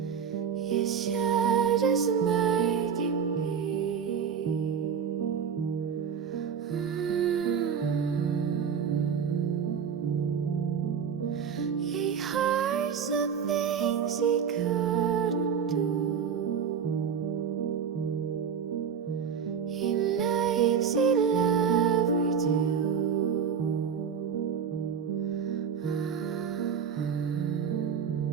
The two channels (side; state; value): left; quieter; 7.2 dB